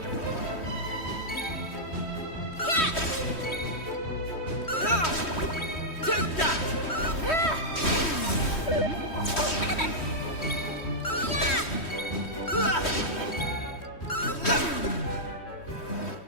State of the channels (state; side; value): late; right; 3.1 ms